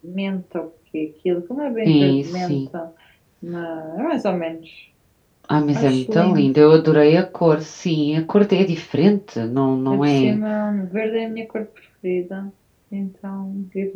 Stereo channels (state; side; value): identical; both; correlation 1.00